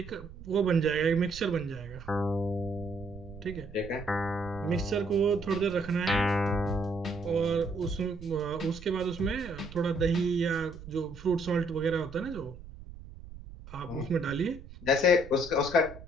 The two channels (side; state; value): right; noise; rumble, 15 dB below the sound